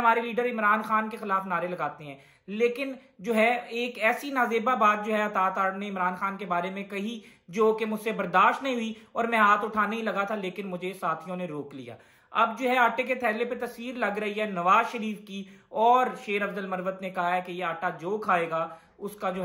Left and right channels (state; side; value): identical; both; correlation 1.00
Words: लीडर इमरान खान के खिलाफ नारे लगाते हैं। लेकिन जो है एक ऐसी नाजेबा बात जो है अता तारड़ ने इमरान खान के बारे में कही जो कि मुझसे बर्दाश्त नहीं हुई और मैं हाथ उठाने ही लगा था, लेकिन मुझे साथियों ने रोक लिया। अब जो है आटे के थैले पे तस्वीर लग रही है नवाज शरीफ की और शेर अफजल मरवत ने कहा है कि यह आटा जो खाएगा उसका जो